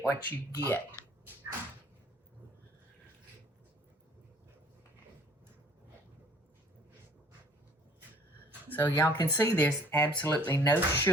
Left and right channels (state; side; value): normal; both; correlation 0.55